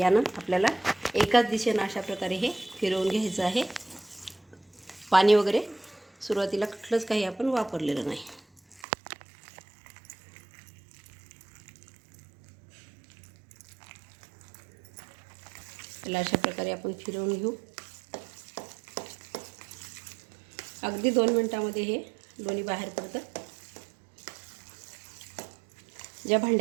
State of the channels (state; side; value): drops out; left; at 8.8 s